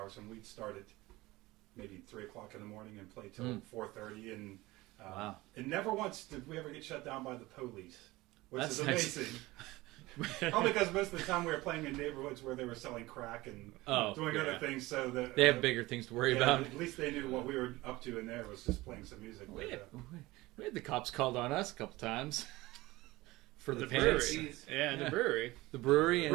and we'd start at maybe 3:00 in the morning and play till 4:30. And Wow. and never once did we ever get shut down by the police, which That's is nice. amazing. Only because most of the time we were playing in neighborhoods where they were selling crack and doing other things, so that They have bigger things to worry about. At least they knew what we were up to in there was just playing some music. We had the cops called on us a couple times for the brewery. pants. Yeah, in the brewery. The brewery, and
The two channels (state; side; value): quieter; left; 19.8 dB